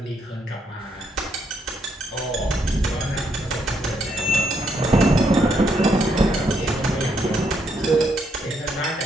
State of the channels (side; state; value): both; normal; correlation 0.75